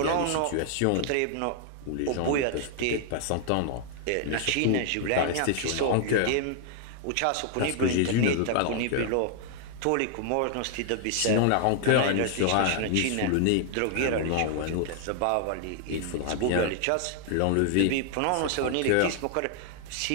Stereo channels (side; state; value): both; different; correlation 0.00